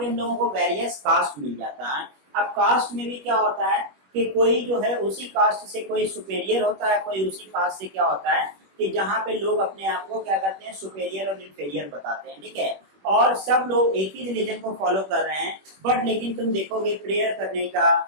हम लोगों को वेरियस कास्ट मिल जाता है। अब कास्ट में भी क्या होता है कि कोई जो है उसी कास्ट से कोई सुपेरियर होता है, कोई उसी कास्ट से क्या होता है कि जहाँ पे लोग अपने आप को क्या करते हैं, सुपेरियर और इन्फेरियर बताते हैं, ठीक है। और सब लोग एक ही रिलीजन को फॉलो कर रहे हैं, बट लेकिन तुम देखोगे प्रेयर करने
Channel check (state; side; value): late; left; 21 ms